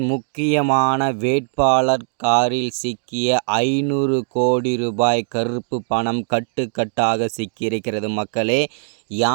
முக்கியமான வேட்பாளர் காரில் சிக்கிய 500 கோடி ரூபாய் கருப்பு பணம் கட்டுக்கட்டாக சிக்கியிருக்கிறது மக்களே.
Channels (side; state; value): left; silent; 59 dB below the other